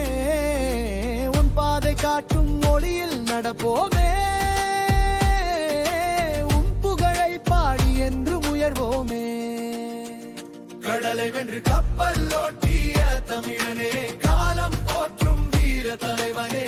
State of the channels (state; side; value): identical; both; correlation 1.00